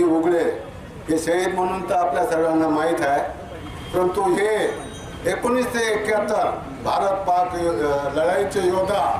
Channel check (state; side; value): identical; both; correlation 1.00